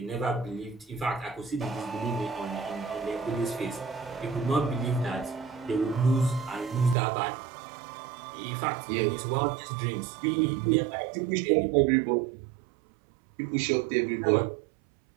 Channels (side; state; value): left; drops out; at 7.0 s